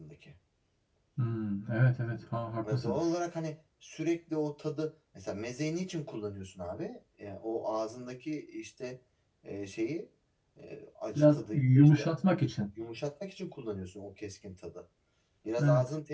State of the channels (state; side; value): identical; both; correlation 1.00